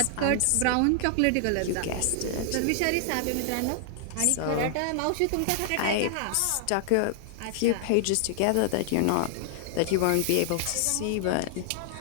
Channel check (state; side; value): different; both; correlation 0.00